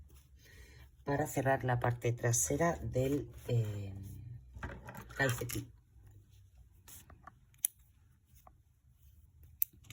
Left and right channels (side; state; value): both; identical; correlation 1.00